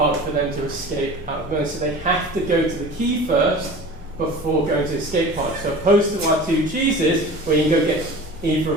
for them to escape out of the so they have to go to the key first before going to the escape pod. So, opposed to our two cheeses, where you can go get either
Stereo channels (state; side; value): normal; both; correlation 0.38